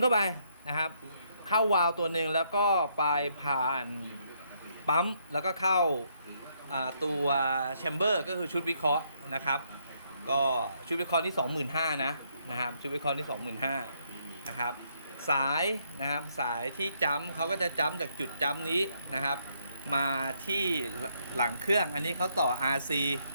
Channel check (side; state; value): both; inverted; correlation -0.73